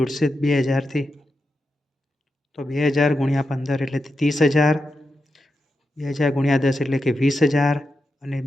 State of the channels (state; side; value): normal; both; correlation 0.88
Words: ઉડશે 2,000થી. તો 2,000 ગુણ્યા 15 એટલે 30,000, 2,000 ગુણ્યા 10 એટલે કે 20,000 અને